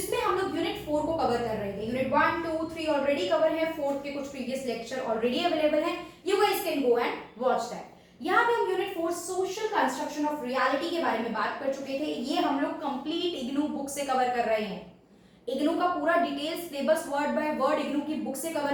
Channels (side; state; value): both; identical; correlation 1.00